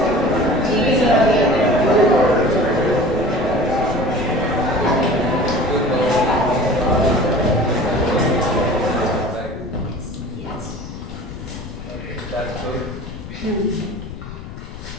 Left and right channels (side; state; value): left; noise; rumble, 12 dB below the sound